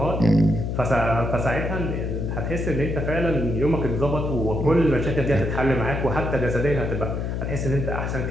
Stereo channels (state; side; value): noise; left; hum, 2 dB below the sound